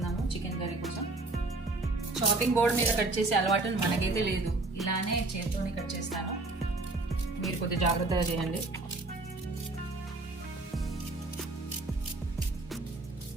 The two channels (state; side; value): quieter; left; 3.2 dB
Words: చికెన్ కర్రీ కోసం. చాపింగ్ బోర్డ్ మీద కట్ చేసే అలవాటు మనకైతే లేదు. ఇలానే చేతితోనే కట్ చేస్తాను. మీరు కొద్దిగా జాగ్రత్తగా చేయండి.